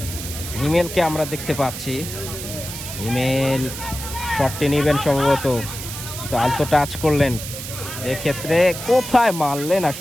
হিমেলকে আমরা দেখতে পাচ্ছি। হিমেল শটটি নেবেন সম্ভবত, তো আলতো টাচ করলেন। এক্ষেত্রে কোথায় মারলেন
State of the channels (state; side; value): noise; right; hiss, 9 dB below the sound